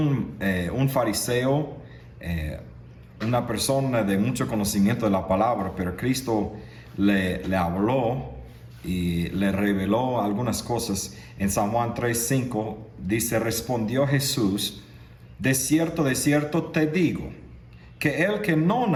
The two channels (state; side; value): identical; both; correlation 1.00